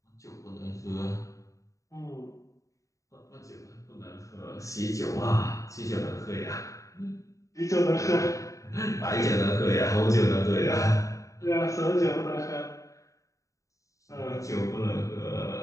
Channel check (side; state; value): right; late; 0.16 ms